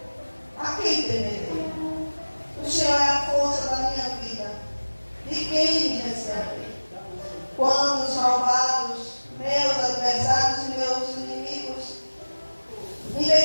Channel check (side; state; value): both; inverted; correlation -1.00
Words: A quem temerei? O Senhor é a força da minha vida. De quem me receberei? Quando os malvados, meus adversários e meus inimigos,